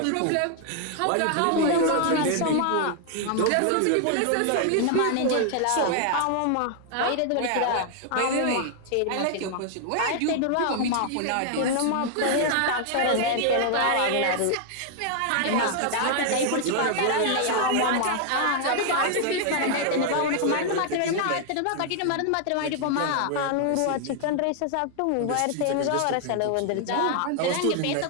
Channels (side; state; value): both; different; correlation 0.00